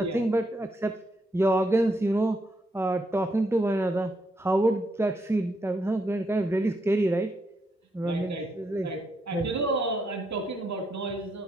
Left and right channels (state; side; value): normal; both; correlation 0.78